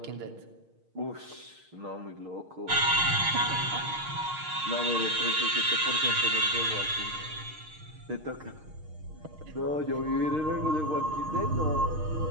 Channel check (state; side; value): late; left; 6.5 ms